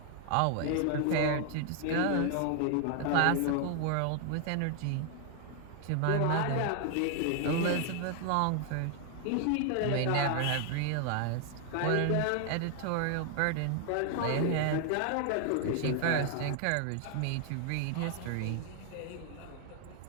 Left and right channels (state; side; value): different; both; correlation 0.00